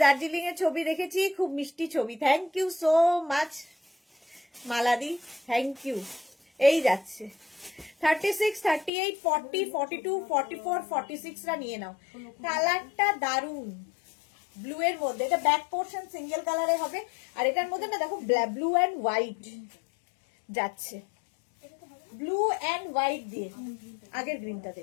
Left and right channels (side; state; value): right; drops out; at 8.9 s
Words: দার্জিলিং এর ছবি দেখেছি, খুব মিষ্টি ছবি। থ্যাংক ইউ সো মাচ মালাদি, থ্যাংক ইউ। এই যাচ্ছে 36, 38, 40, 42, 44, 46 রা নিয়ে নাও। কালারটা দারুন, ব্লু এর মধ্যে, এটা ব্যাক পোর্শন সিঙ্গেল কালারে হবে, আর এটার মধ্যে না দেখো ব্লু এন্ড হোয়াইট যাচ্ছে, ব্লু এন্ড হোয়াইট দিয়ে, আগের গ্রিনটাতে